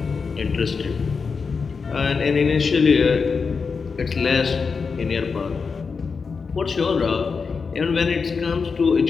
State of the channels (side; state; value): right; quieter; 5.1 dB